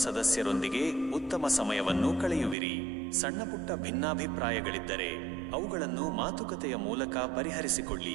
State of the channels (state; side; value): drops out; left; at 2.6 s